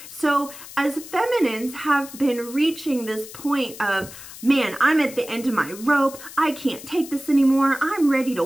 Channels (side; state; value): left; noise; hiss, 15 dB below the sound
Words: So as feminines have been reaching this point of, man, I'm at the end of my rope, I can't take this anymore, I'm ready to